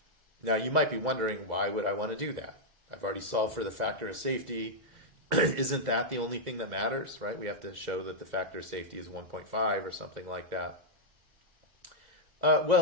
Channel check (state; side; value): late; left; 2.0 ms